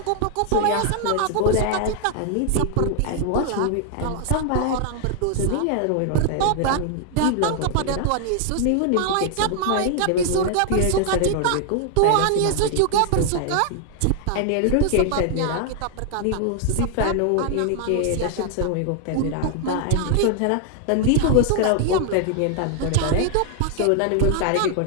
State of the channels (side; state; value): both; different; correlation 0.00